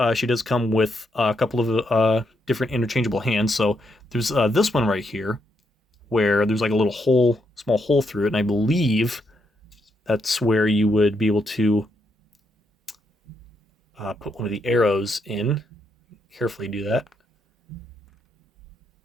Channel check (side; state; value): both; normal; correlation 0.78